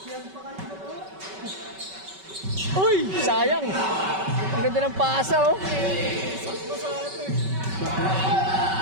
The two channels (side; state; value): left; late; 5.2 ms